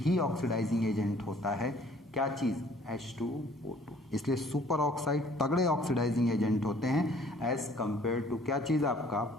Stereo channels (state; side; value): normal; both; correlation 0.57